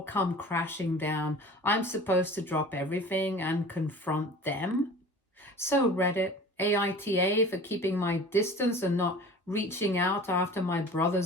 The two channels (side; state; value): both; normal; correlation 0.41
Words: come crashing down, I'm supposed to drop everything and confront them? So Reddit, AITA for keeping my distance and not reaching out after my